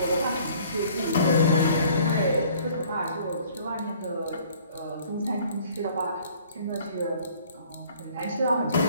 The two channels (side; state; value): both; inverted; correlation -0.55